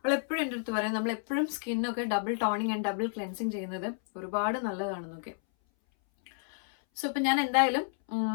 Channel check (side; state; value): right; silent; 57 dB below the other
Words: എപ്പോഴും എൻ്റെ അടുത്ത് പറയും നമ്മളെപ്പോഴും സ്കിന്നൊക്കെ double toning and double cleansing ചെയ്യുന്നത് ഒരുപാട് നല്ലതാണെന്നൊക്കെ. സോ ഇപ്പം ഞാൻ എന്തായാലും